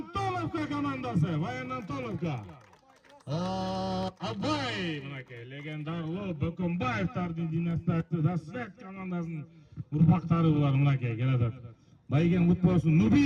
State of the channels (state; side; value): identical; both; correlation 1.00